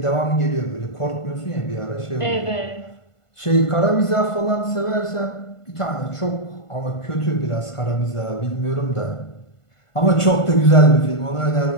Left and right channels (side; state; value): right; late; 1.5 ms